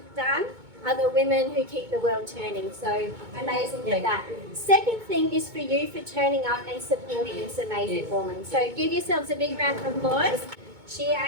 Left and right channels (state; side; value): late; left; 2.2 ms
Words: done are the women who keep the world turning. So amazing at that. Second thing is for you for turning up and supporting this amazing woman. So give yourselves a big round of applause. She